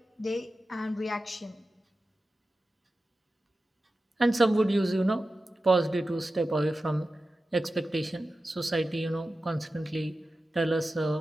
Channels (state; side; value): normal; both; correlation 0.94